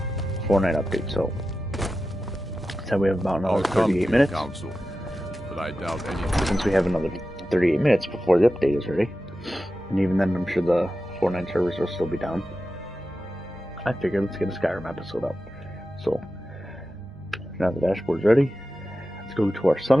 Fortnite update, so we have about another 38 minutes. Council, but I doubt anything. Since we have another 38 minutes before the update is ready. And even then I'm sure the Fortnite servers will still be down. I figured let's get a Skyrim episode up. So now the dashboard's ready. Let's go to our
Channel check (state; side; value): normal; both; correlation 0.92